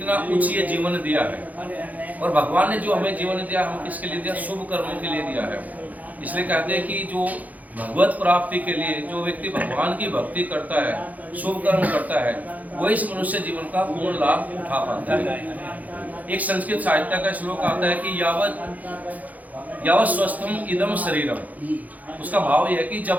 उच्च जीवन दिया है, और भगवान ने जो हमें जीवन दिया हम किसके लिए दिया? शुभ कर्मों के लिए दिया है। इसलिए कहते हैं कि जो भगवत प्राप्ति के लिए जो व्यक्ति भगवान की भक्ति करता है, शुभ कर्म करता है, वो इस मनुष्य जीवन का पूर्ण लाभ उठा पाता है। एक संस्कृत साहित्य का श्लोक आता है कि यावत स्वस्थम इदम शरीरम। उसका भाव यह है कि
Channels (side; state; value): left; late; 0.078 ms